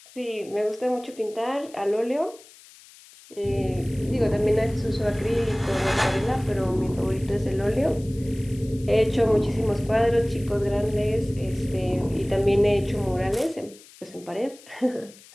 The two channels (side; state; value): left; noise; hiss, 23 dB below the sound